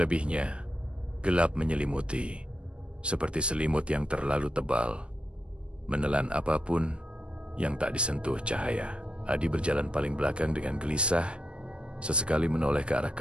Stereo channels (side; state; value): left; late; 0.057 ms